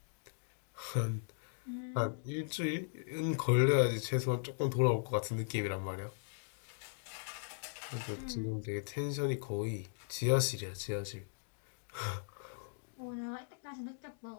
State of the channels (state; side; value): silent; right; digital silence